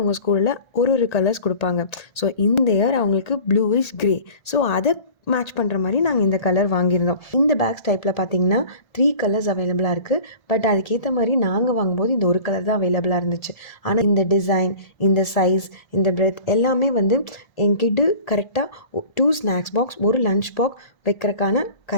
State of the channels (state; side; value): late; right; 1.3 ms